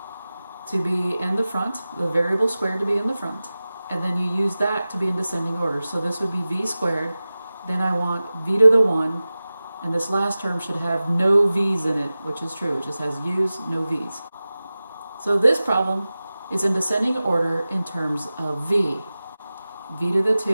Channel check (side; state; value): both; inverted; correlation -0.97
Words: to be in the front, the variable squared to be in the front, and then you use that to be in descending order. So this would be v squared, then I want v to the 1, and this last term should have no v's in it, which is true. It just has u's, no v's. So this problem is in descending order in terms of v. v to the